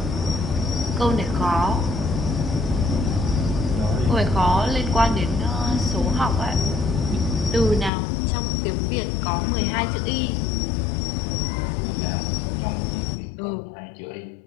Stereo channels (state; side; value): drops out; right; at 7.9 s